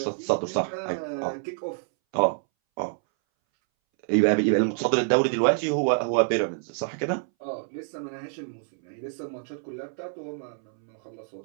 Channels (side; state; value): left; silent; 60 dB below the other